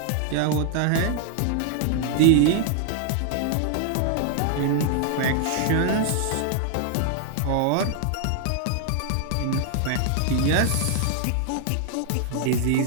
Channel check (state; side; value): different; both; correlation 0.00